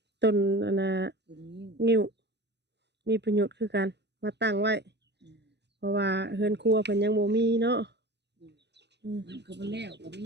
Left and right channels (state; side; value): late; left; 0.50 ms